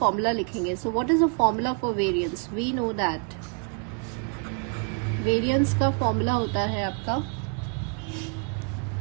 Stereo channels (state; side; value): quieter; left; 39.0 dB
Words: लिखेंगे। So what is the formula for variance? We know that variance का फॉर्मूला होता है आपका